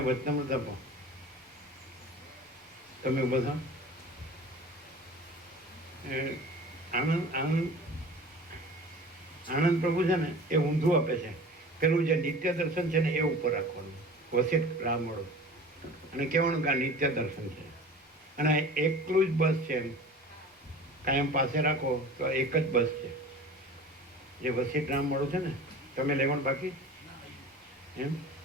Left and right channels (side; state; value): both; normal; correlation 0.40